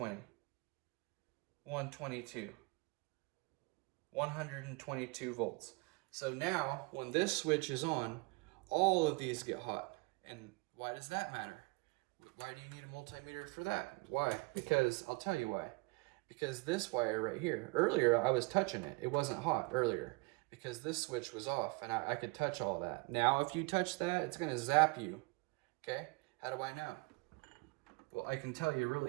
122, 122 volts. So now when this switch is on, all of these get hot. And why does that matter? Why do you need a multimeter for that? Why? Because I'll tell you why. Because this wire right here, earlier I was touching it. It wasn't hot earlier because this switch was off and I could touch all that. Now if you touch that, it's going to zap you. Okay? How do I know? Well, I can tell you real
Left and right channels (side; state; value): left; quieter; 28.0 dB